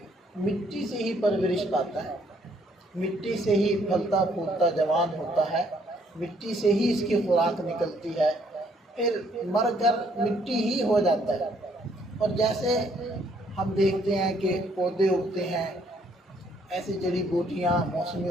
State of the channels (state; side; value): normal; both; correlation 0.67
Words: مٹی سے ہی پرورش پاتا ہے، مٹی سے ہی پھلتا پھولتا جوان ہوتا ہے، مٹی سے ہی اس کی خوراک نکلتی ہے، پھر مر کر مٹی ہی ہو جاتا ہے۔ اور جیسے ہم دیکھتے ہیں کہ پودے اگتے ہیں، ایسی جڑی بوٹیاں موسمی